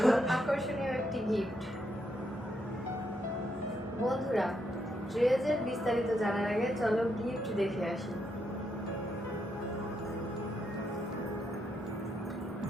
আকর্ষণীয় একটি গিফট। বন্ধুরা, ড্রেসের বিস্তারিত জানার আগে চলো গিফট দেখে আসি।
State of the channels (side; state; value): both; normal; correlation 0.79